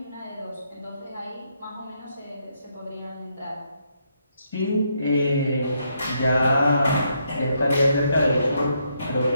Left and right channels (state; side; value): inverted; both; correlation -0.76